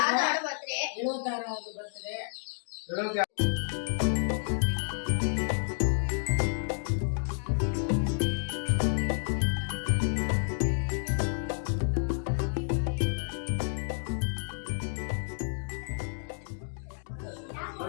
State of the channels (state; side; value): silent; right; digital silence